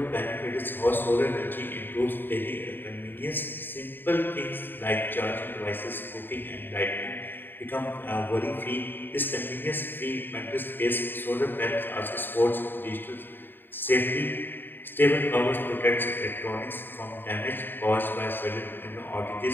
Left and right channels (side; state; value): right; late; 0.095 ms